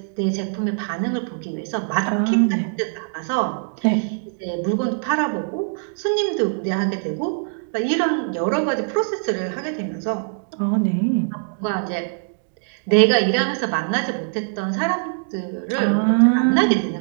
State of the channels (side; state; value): left; silent; digital silence